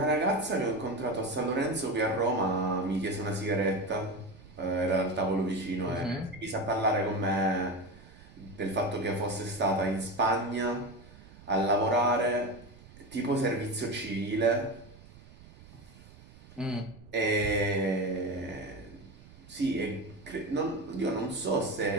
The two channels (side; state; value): right; noise; rumble, 21 dB below the sound